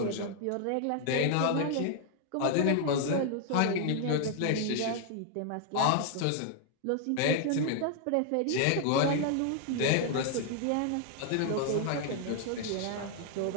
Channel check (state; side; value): different; both; correlation 0.00